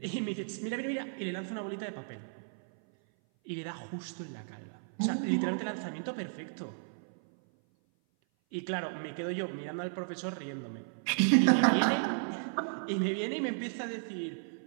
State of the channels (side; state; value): left; silent; 55 dB below the other